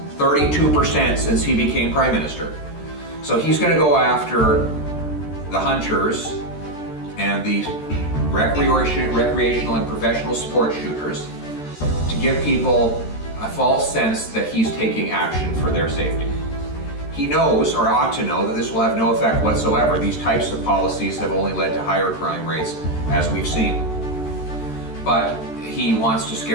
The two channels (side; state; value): right; late; 13 ms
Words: 32% since he became Prime Minister. So he's going to go after the hunters and the recreational and professional sport shooters to give people a false sense that he's taking action for their safety. He knows, or ought to know, that this will have no effect whatsoever. These types of policies have only led to higher crime rates, as we've seen. But he wants to